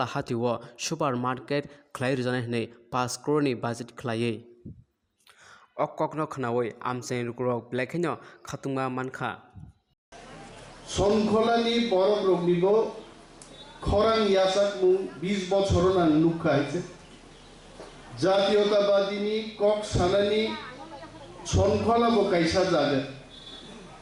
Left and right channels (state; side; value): identical; both; correlation 1.00